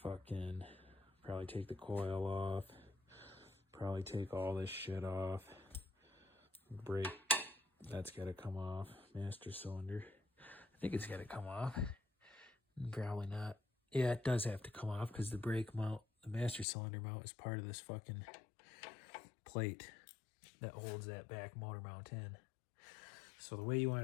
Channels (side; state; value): right; drops out; at 16.7 s